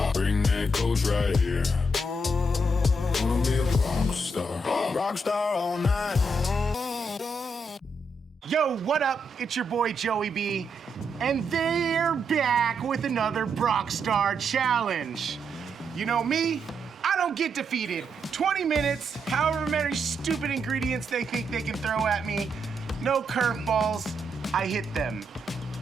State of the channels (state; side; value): normal; both; correlation 0.79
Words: bring that coach right here. Gonna be a rock star all night. Yo, what up? It's your boy Joey B, and they're back with another Rockstar Challenge. You know me, I don't get defeated. 20 minutes, however many stupid ingredients they think they can throw at me. No curveballs, I hit them.